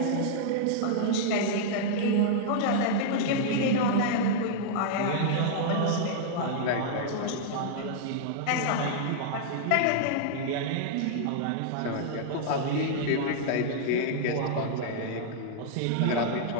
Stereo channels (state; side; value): different; both; correlation -0.01